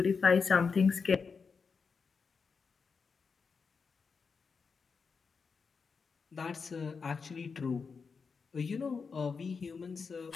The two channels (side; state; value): right; quieter; 5.3 dB